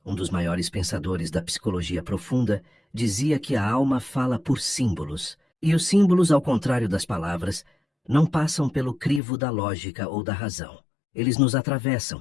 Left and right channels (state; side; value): drops out; right; at 9.2 s